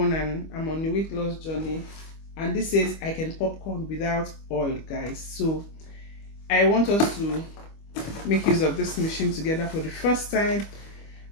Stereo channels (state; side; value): late; right; 25 ms